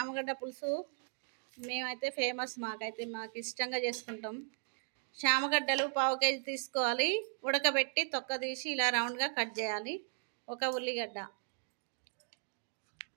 పులుసు మేమైతే ఫేమస్. మాకు ఇష్టంగా చేసుకుంటాం. శామగడ్డలు పావు కేజీ తీసుకోవాలి. ఉడకబెట్టి తొక్క తీసి ఇలా రౌండ్గా కట్ చేయాలి. ఒక ఉల్లిగడ్డ,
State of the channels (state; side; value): silent; left; 53 dB below the other